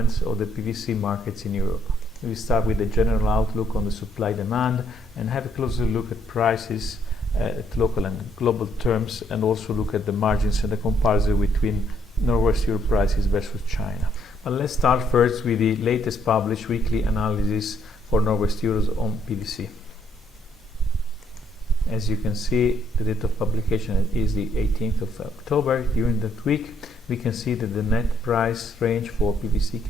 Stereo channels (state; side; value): normal; both; correlation 0.70